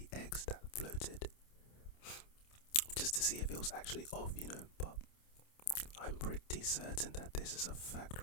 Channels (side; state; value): right; late; 28 ms